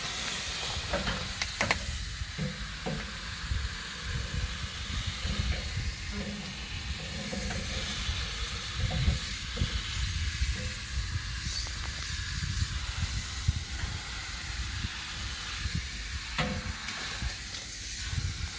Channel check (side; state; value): both; identical; correlation 1.00